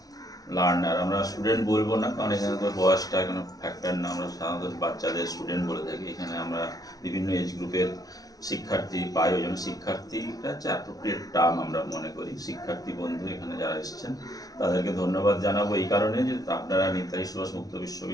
লার্নার। আমরা স্টুডেন্ট বলবো না, কারণ এখানে তো বয়সটা কোনো ফ্যাক্টর না, আমরা সাধারণত বাচ্চাদের স্টুডেন্ট বলে থাকি। এখানে আমরা বিভিন্ন এজ গ্রুপের শিক্ষার্থী পাই, ওই জন্য শিক্ষার্থীটা হচ্ছে অ্যাপ্রোপ্রিয়েট টার্ম আমরা মনে করি। শিক্ষার্থী বন্ধু এখানে যারা এসেছেন তাদেরকে ধন্যবাদ জানাবো এই কারণে যে আপনারা নেতাজি সুভাষ মুক্ত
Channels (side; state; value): right; late; 0.18 ms